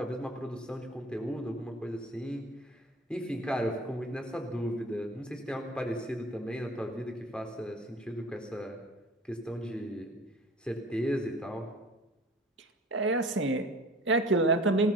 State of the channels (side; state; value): both; normal; correlation 0.45